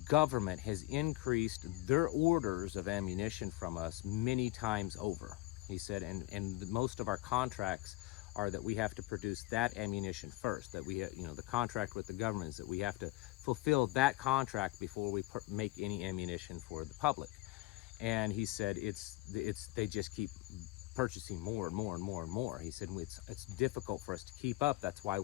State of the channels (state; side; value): quieter; right; 18.9 dB